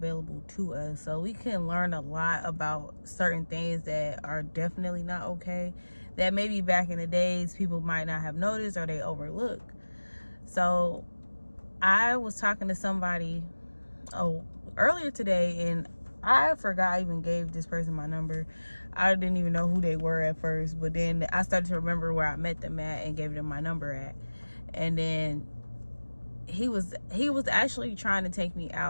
to us, so we can learn a lot about certain things that are definitely not okay, that maybe back in the days people might not have noticed or they overlook. So I was talking to somebody earlier today, and I forgot I even gave this person my number. I didn't even know who they were at first, but then I started to remember where I met them at and gave them my number at. And then he was actually trying to take me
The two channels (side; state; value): both; inverted; correlation -1.00